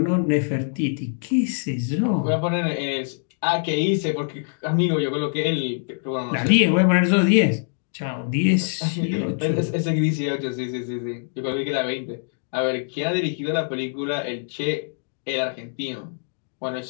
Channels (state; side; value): silent; right; digital silence